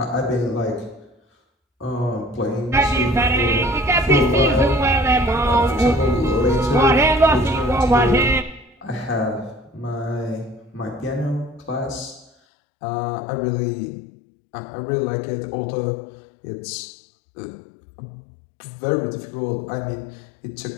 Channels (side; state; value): right; drops out; at 12.3 s